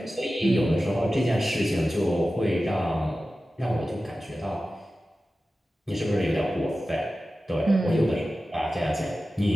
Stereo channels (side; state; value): both; normal; correlation 0.94